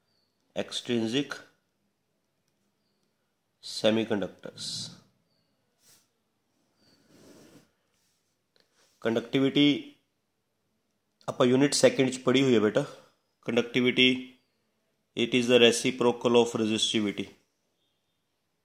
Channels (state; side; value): identical; both; correlation 1.00